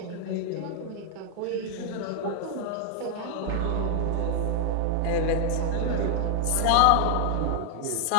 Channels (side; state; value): both; different; correlation 0.00